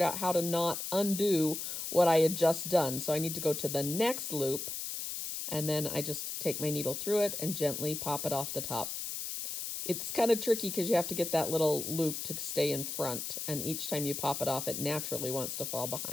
out how to not undo what I had just done. So I need to go to the next loop, and then I just take my needle through it and gently pop it off the top. It's kind of tricky because you have to get that little loop to stay in front. And each time you pop it off, it naturally wants to fall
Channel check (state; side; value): noise; left; hiss, 5 dB below the sound